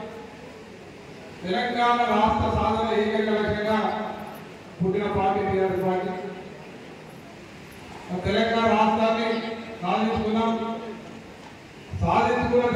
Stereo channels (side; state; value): both; identical; correlation 1.00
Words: తెలంగాణ రాష్ట్ర సాధన ఏకైక లక్ష్యంగా పుట్టిన పార్టీ టీఆర్ఎస్ పార్టీ। తెలంగాణ రాష్ట్రాన్ని సాధించుకున్న